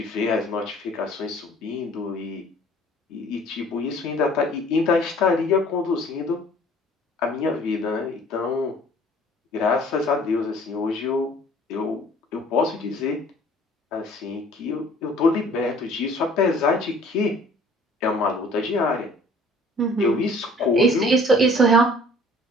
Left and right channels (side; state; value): both; normal; correlation 0.53